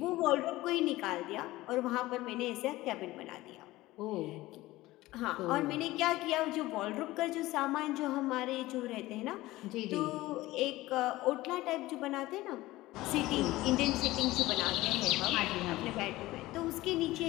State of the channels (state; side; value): quieter; right; 18.0 dB